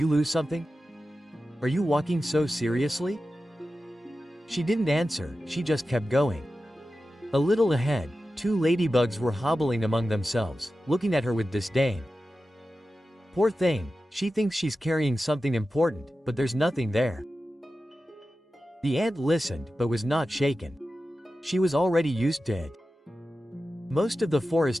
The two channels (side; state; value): both; normal; correlation 0.93